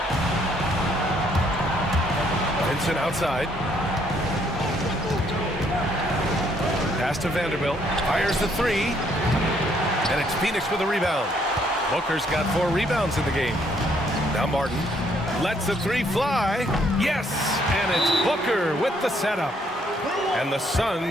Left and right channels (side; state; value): both; normal; correlation 0.68